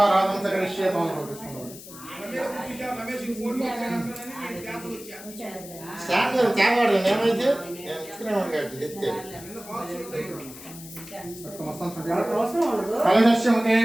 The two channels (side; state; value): left; noise; hiss, 16 dB below the sound